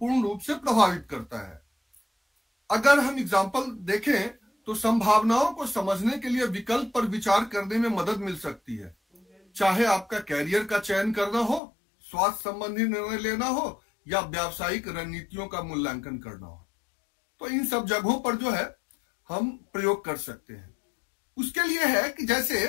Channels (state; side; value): drops out; right; at 11.6 s